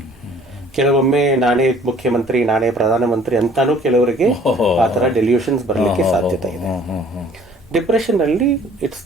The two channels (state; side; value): normal; both; correlation 0.54